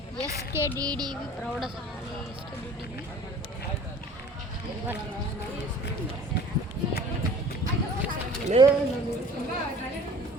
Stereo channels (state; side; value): normal; both; correlation 0.46